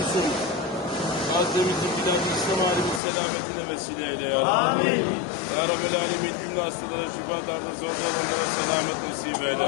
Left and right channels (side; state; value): right; drops out; at 3.0 s